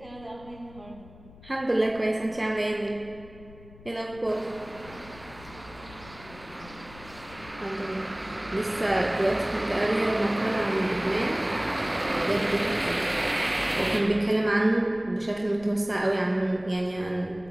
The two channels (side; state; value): left; noise; rumble, 20 dB below the sound